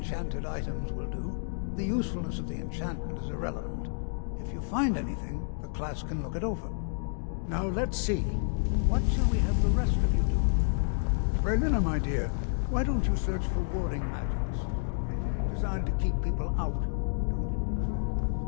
items will do. The usefulness of the enchantment is irrelevant. If you find anything, the class can look it over. Now let's see. What shall we have the rest of you do? Berlina, my dear, why don't you search for warding magics? Anything designed to keep people out. Don't interact with them,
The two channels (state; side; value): silent; right; digital silence